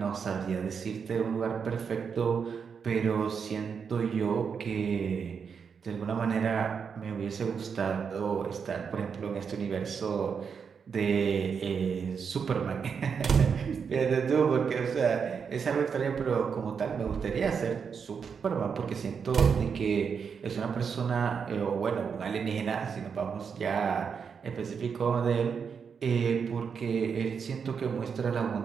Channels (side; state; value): left; quieter; 6.4 dB